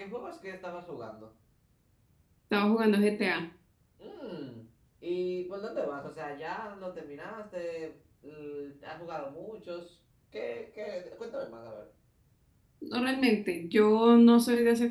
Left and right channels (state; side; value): identical; both; correlation 1.00